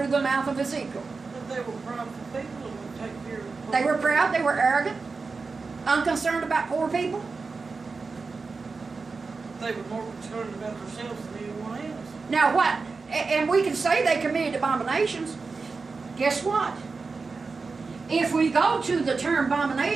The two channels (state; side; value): quieter; left; 4.4 dB